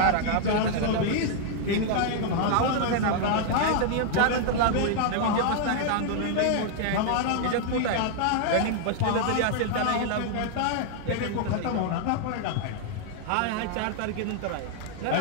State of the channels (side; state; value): both; different; correlation -0.01